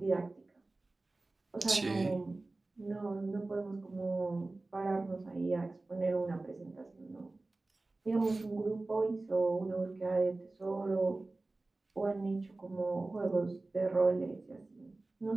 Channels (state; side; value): quieter; left; 3.1 dB